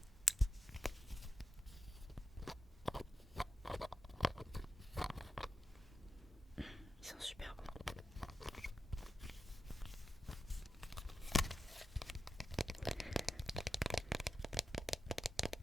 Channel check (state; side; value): normal; both; correlation 0.90